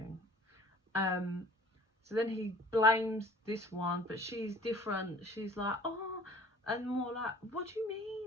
So then he blames this one, but she's different. She's like, oh, and more like, what do you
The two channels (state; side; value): normal; both; correlation 0.49